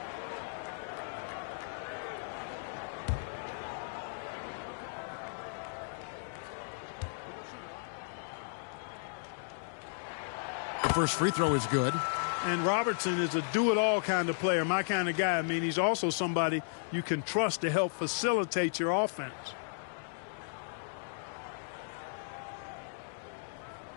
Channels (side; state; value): right; silent; digital silence